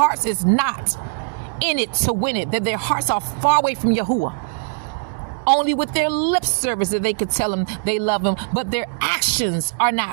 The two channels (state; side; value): silent; left; digital silence